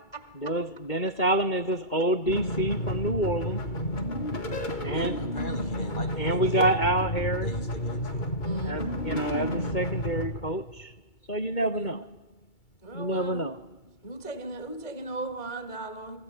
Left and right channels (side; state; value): right; late; 2.3 ms